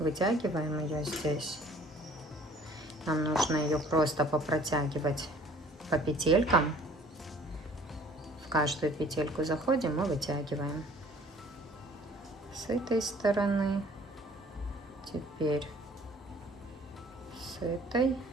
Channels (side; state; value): both; normal; correlation 0.53